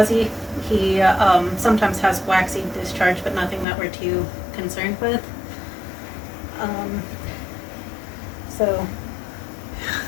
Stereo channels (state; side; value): drops out; right; at 3.7 s